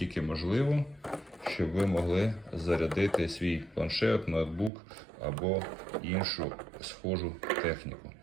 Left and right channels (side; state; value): left; drops out; at 4.7 s